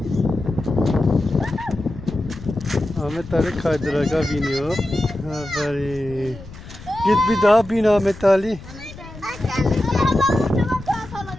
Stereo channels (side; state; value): left; noise; rumble, 17 dB below the sound